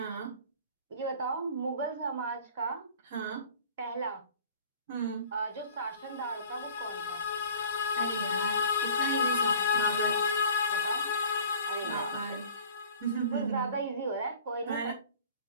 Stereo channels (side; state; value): both; inverted; correlation -0.46